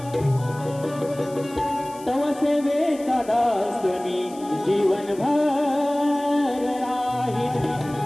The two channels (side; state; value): left; noise; hiss, 21 dB below the sound